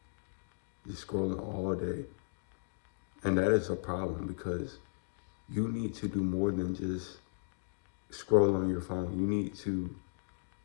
Just scrolling all day. And that is a problem because you need to do more than just scroll on your phone. You need to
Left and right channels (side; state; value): right; silent; digital silence